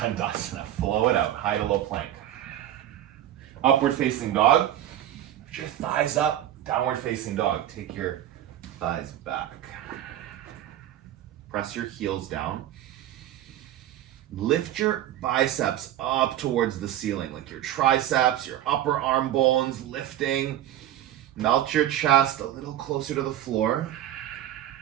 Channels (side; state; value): left; quieter; 12.2 dB